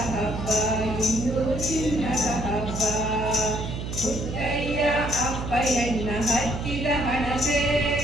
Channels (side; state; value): right; noise; hum, 6 dB below the sound